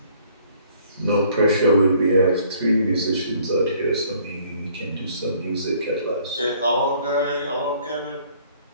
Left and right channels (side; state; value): both; inverted; correlation -0.60